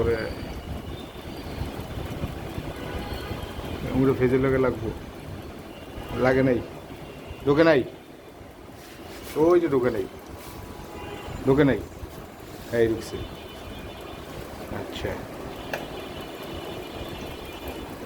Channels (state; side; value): identical; both; correlation 1.00